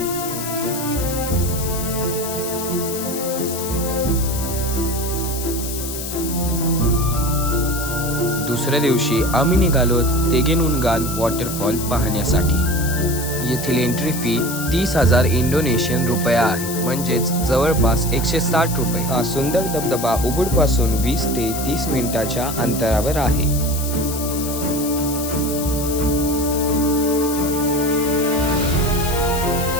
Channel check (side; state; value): left; noise; hiss, 7 dB below the sound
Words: दुसऱ्या दिवशी आम्ही निघालो तेगेनुनगान waterfall पाहण्यासाठी. येथील एंट्री फी 30,000 इंडोनेशियन रुपया आहे, म्हणजेच जवळपास 160 रुपये. हा सुंदर धबधबा उबुडपासून 20 ते 30 मिनिटाच्या अंतरावर आहे.